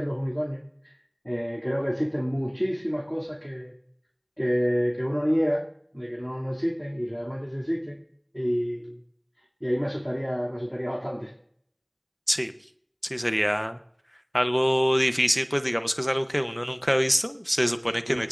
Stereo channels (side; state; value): both; identical; correlation 1.00